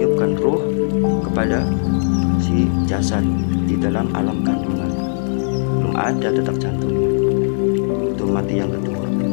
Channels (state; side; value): silent; right; 57 dB below the other